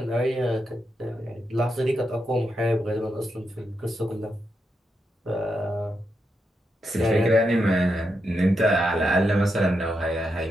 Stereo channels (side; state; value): both; normal; correlation 0.84